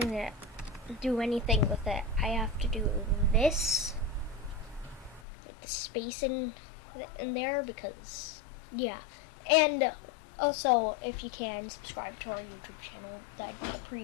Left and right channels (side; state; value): right; drops out; at 5.2 s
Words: to do anything with it. I have to do this with the space in there, because and also, if you can subscribe to our YouTube channel, that'd be